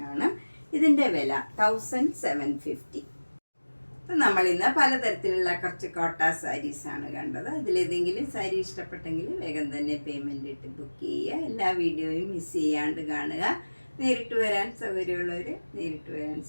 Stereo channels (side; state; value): both; inverted; correlation -1.00